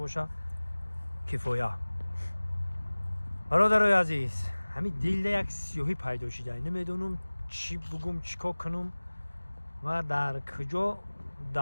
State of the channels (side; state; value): both; inverted; correlation -1.00